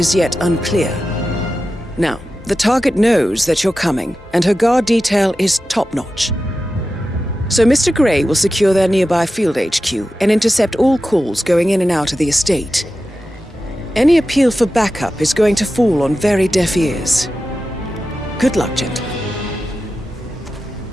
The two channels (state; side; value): normal; both; correlation 0.92